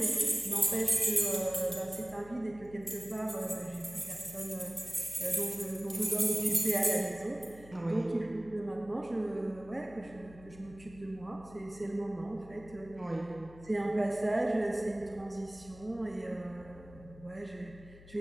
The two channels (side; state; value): left; noise; hum, 19 dB below the sound